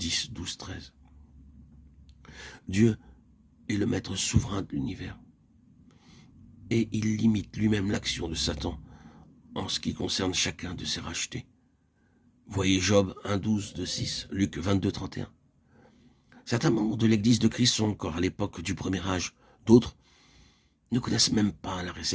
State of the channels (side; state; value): both; identical; correlation 1.00